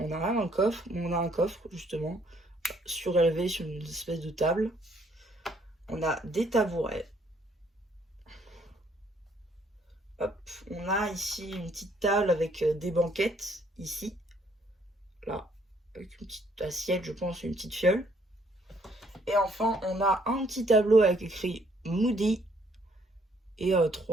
n'a rien dans le coffre, mais on a un coffre justement surélevé sur une espèce de table. On a des tabourets. Hop, on a ici une petite table avec des banquettes ici, là, avec une petite assiette, je pense, une petite fiole. Et enfin, on a un petit tableau avec écrit Moody et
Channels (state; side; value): normal; both; correlation 0.66